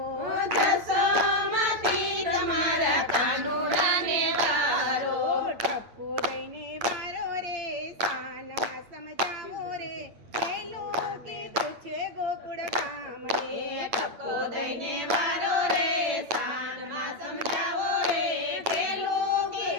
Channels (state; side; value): late; left; 9.0 ms